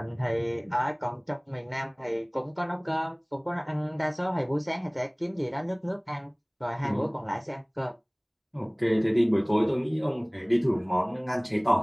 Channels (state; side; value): identical; both; correlation 1.00